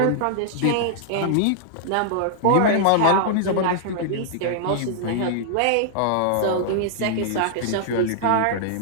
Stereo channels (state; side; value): different; both; correlation -0.01